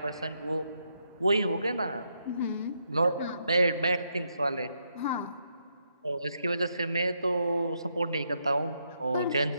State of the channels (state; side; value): inverted; both; correlation -0.78